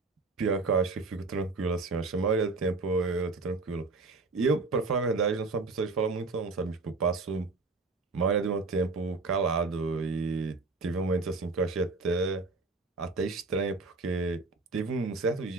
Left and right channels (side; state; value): left; quieter; 3.8 dB